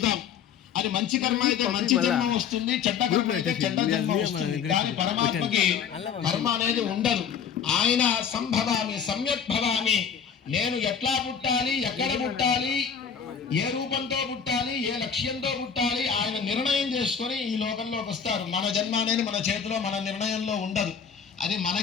అది మంచి కర్మ అయితే మంచి జన్మ వస్తుంది, చెడ్డ కర్మ అయితే చెడ్డ జన్మ వస్తుంది. కానీ పరమాత్మకి కర్మ అనేది ఉండదు. ఆయన సంభవామి సమ్యక్ భవామి, నేను ఎట్లా పుట్టాలి, ఎక్కడ పుట్టాలి, ఏ రూపంతో పుట్టాలి, ఏ లక్ష్యంతో పుట్టాలి, ఆయన నిర్ణయం చేసుకొని ఈ లోకంలోకి వస్తారు. మన జన్మ అనేది మన చేతిలో, మన నిర్ణయంలో ఉండదు. అది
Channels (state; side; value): quieter; right; 7.1 dB